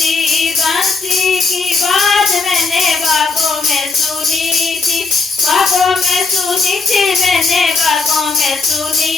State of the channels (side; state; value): right; quieter; 4.3 dB